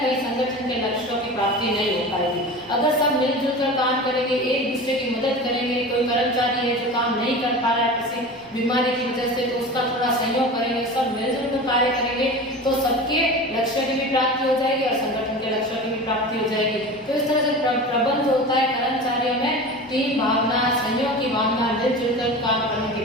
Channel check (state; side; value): noise; right; rumble, 30 dB below the sound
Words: संगठन के लक्ष्यों की प्राप्ति नहीं हो पाएगी। अगर सब मिलजुल कर काम करेंगे, एक दूसरे की मदद करेंगे, कोई कर्मचारी है जो काम नहीं कर पा रहा है किसी बीमारी की वजह से, तो उसका थोड़ा सहयोग करेंगे, सब मिलजुल कर कार्य करेंगे, तो सबके लक्ष्य की भी प्राप्ति हो जाएगी और संगठन के लक्ष्यों की भी प्राप्ति हो जाएगी। तो इस तरह से प्रबंध जो होता है कर्मचारियों में टीम भावना, सहयोग की भावना, मिलजुल कर काम करने